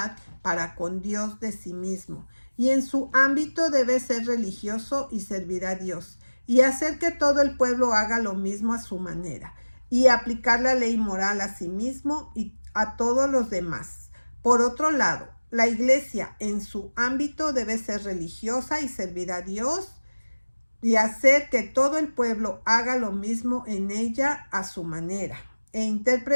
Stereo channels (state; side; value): inverted; both; correlation -1.00